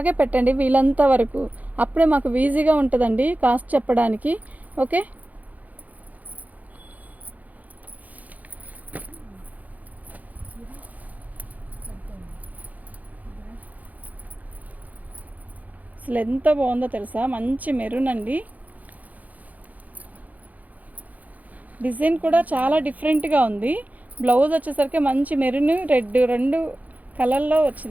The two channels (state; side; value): late; left; 0.078 ms